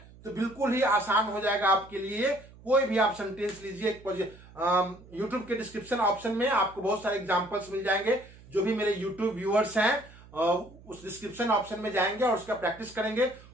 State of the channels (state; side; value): noise; right; hum, 22 dB below the sound